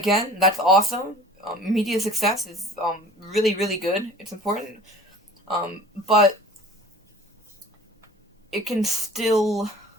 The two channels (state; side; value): normal; both; correlation 0.45